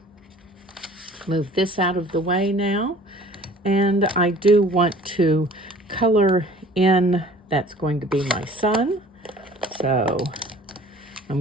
Move this out of the way now. And I do want to color in, that's going to be my sun. So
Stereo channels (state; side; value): normal; both; correlation 0.49